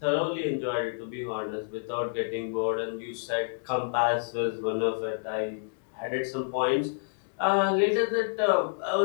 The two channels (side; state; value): right; silent; digital silence